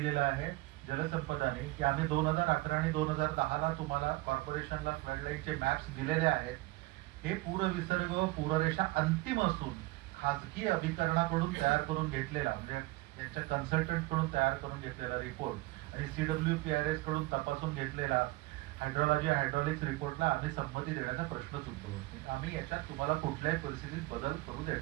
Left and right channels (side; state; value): left; quieter; 21.0 dB